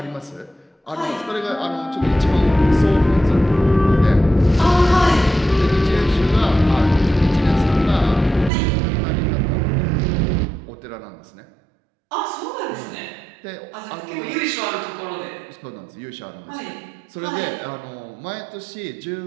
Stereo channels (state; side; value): drops out; left; at 8.5 s